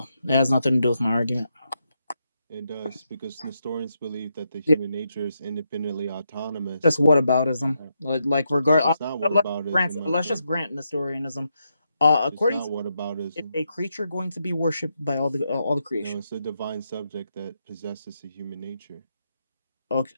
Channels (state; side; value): inverted; both; correlation -0.82